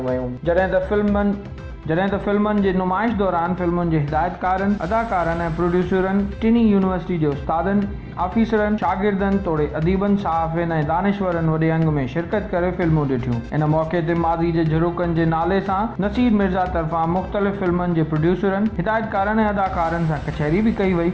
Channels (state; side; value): identical; both; correlation 1.00